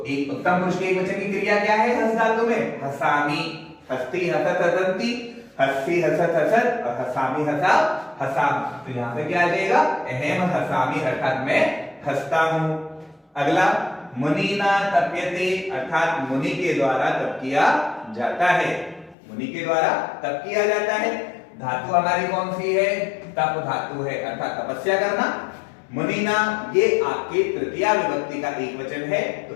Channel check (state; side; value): drops out; right; at 19.2 s